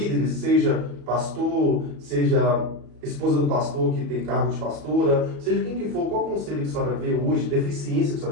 seja pastor, seja esposa do pastor que tem cargo de pastora, seja quem que for, qual conselho que a senhora vê hoje, deficiência que a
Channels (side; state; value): left; late; 34 ms